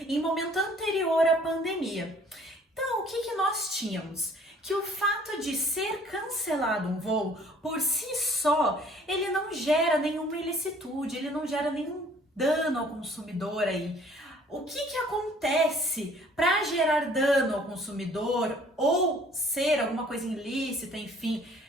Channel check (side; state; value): both; normal; correlation 0.56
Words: em momento anterior à pandemia. Então, o que nós tínhamos? Que o fato de ser cancelado um voo, por si só, ele não gera nenhuma ilicitude, ele não gera nenhum dano ao consumidor aí. O que acontece para gerar dano ao consumidor ou ser alguma coisa ilícita, enfim?